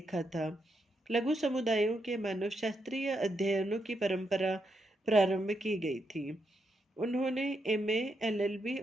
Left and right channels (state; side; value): normal; both; correlation 0.81